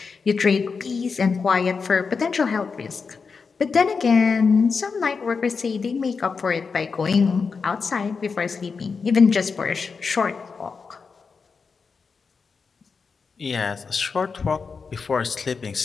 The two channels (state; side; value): quieter; right; 5.1 dB